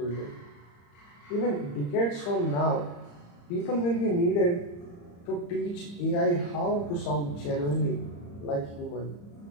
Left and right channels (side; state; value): right; late; 35 ms